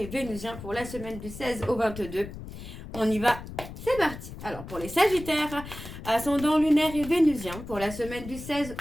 vénusien pour la semaine du 16 au 22. On y va, c'est parti. Alors pour les Sagittaires, ascendant lunaire et vénusien pour la semaine du 16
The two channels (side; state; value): left; noise; rumble, 12 dB below the sound